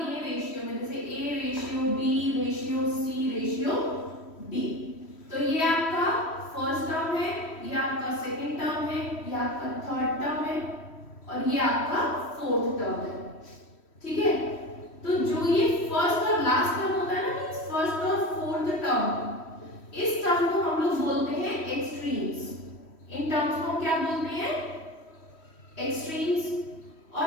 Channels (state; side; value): late; right; 3.1 ms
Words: दिए रेशियो में, जैसे A ratio B ratio C ratio D, तो ये आपका फर्स्ट टर्म है, ये आपका सेकंड टर्म है, ये आपका थर्ड टर्म है और ये आपका फोर्थ टर्म है। ठीक है, तो जो ये फर्स्ट और लास्ट टर्म होता है ना, मींस फर्स्ट और फोर्थ टर्म, इस टर्म को हम लोग बोलते हैं एक्सट्रीम्स। इन टर्म्स को क्या बोलते हैं? एक्सट्रीम्स।